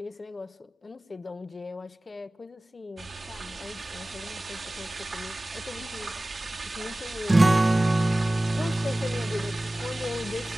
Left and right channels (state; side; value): normal; both; correlation 0.97